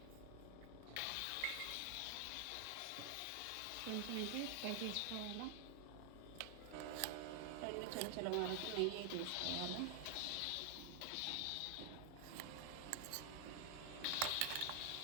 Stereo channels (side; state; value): both; different; correlation 0.00